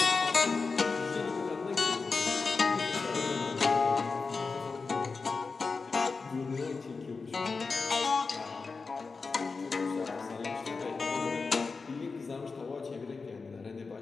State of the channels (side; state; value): right; quieter; 4.4 dB